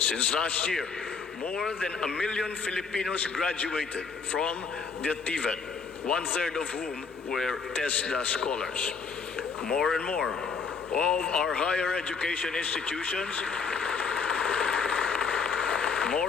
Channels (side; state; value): right; quieter; 5.3 dB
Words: last year, more than 1 million Filipinos graduated from the TVET, one-third of whom were TESDA scholars. More and more